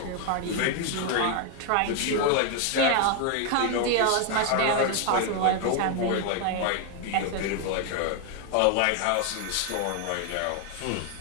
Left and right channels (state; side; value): different; both; correlation 0.01